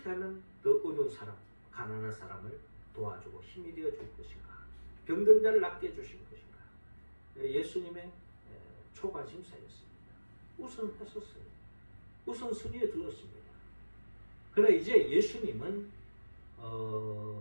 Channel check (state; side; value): inverted; both; correlation -1.00